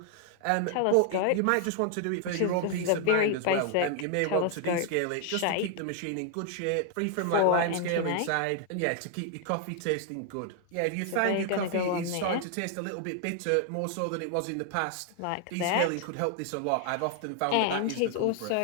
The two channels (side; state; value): both; different; correlation 0.00